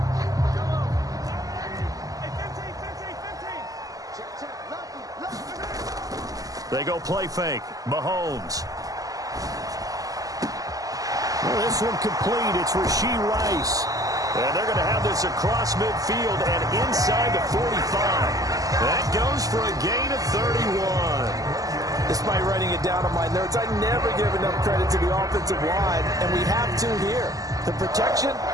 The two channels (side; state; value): left; late; 0.17 ms